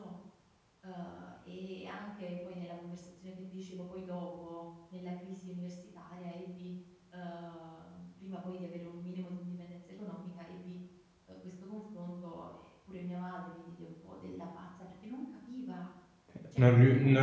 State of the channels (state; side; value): identical; both; correlation 1.00